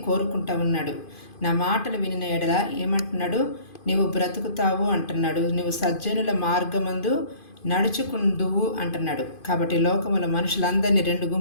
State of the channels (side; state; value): right; late; 2.5 ms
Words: కోరుకుంటా ఉన్నాడు. నా మాటలు వినిన ఎడల ఏమంటున్నాడు? నీవు బ్రతుకుతావు అంటున్నాడు. నువ్వు సజ్జనుల మార్గమందు నడుచుకుందువు అంటున్నాడు. కాబట్టి లోకముల మనుషులందరినీ 2